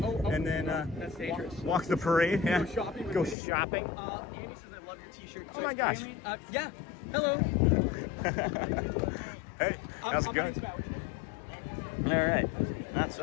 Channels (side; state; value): right; drops out; at 3.4 s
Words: and then that's dangerous. walk the parade. Yeah. Go shopping. Go shopping. Andy says I love your t-shirt. Oh my gosh. Yeah. Hello. Hey, how's it going? All right. That's